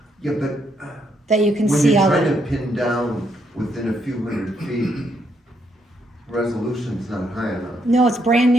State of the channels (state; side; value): normal; both; correlation 0.75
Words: Yeah, but that you can when see you're all trying the. to pin down within a few hundred feet, resolution's not high enough. No, it's brand